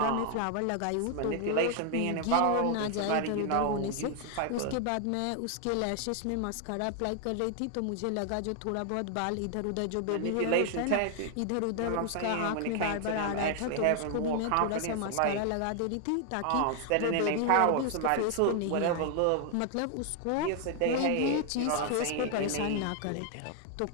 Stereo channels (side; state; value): both; different; correlation 0.00